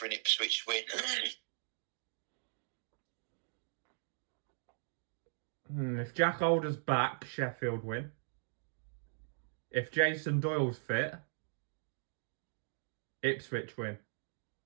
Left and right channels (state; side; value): silent; left; digital silence